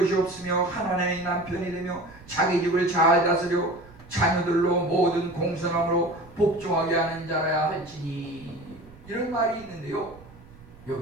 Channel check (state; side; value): noise; right; rumble, 22 dB below the sound